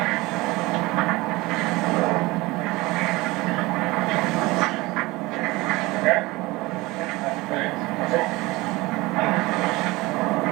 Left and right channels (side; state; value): left; quieter; 21.4 dB